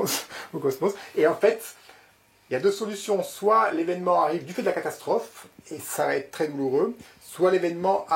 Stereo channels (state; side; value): identical; both; correlation 1.00